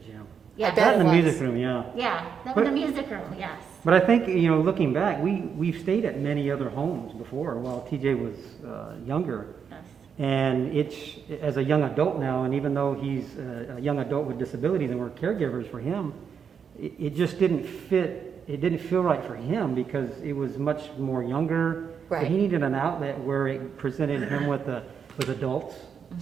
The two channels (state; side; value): quieter; left; 7.0 dB